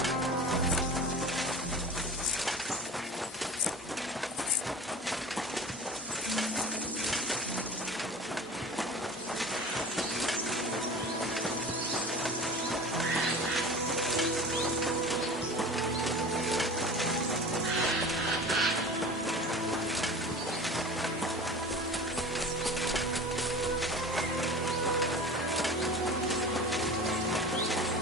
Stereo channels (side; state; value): both; normal; correlation 0.37